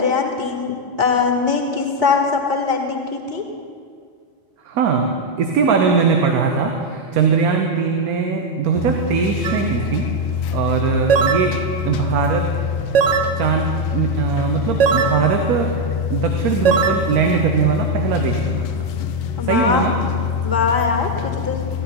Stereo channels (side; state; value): left; late; 4.2 ms